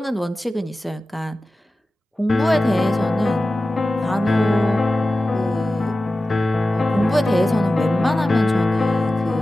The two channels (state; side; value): normal; both; correlation 0.95